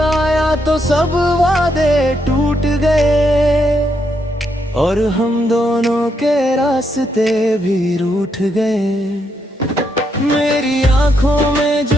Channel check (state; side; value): normal; both; correlation 0.78